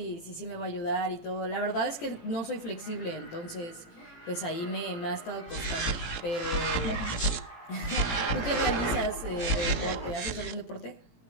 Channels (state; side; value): late; right; 18 ms